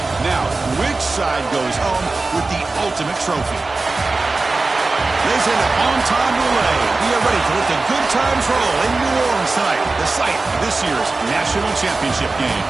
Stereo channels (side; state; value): left; quieter; 3.5 dB